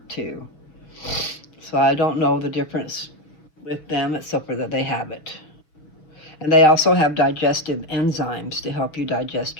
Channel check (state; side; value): late; right; 6.5 ms